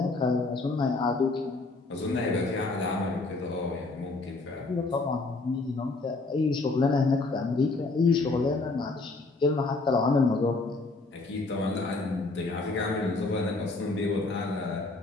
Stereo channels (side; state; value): right; quieter; 3.4 dB